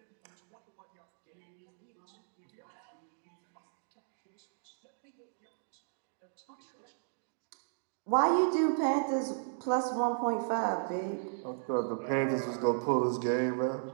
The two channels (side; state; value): left; silent; digital silence